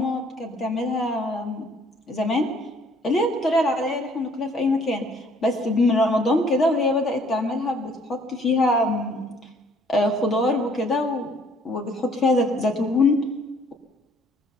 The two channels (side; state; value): both; normal; correlation 0.60